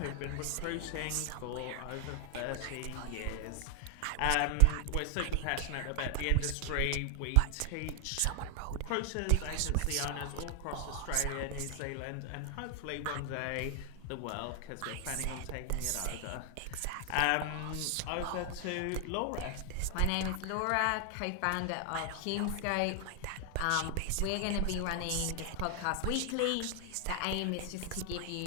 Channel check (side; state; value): both; different; correlation 0.00